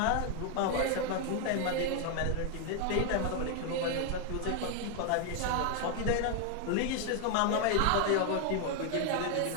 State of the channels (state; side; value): different; both; correlation 0.00